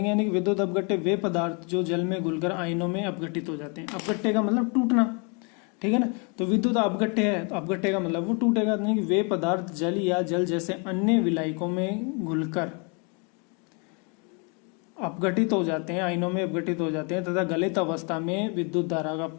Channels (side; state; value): right; quieter; 34.6 dB